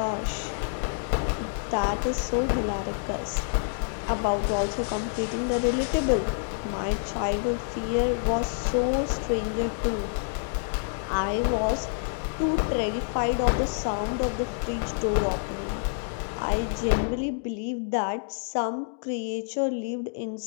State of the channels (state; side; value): silent; right; digital silence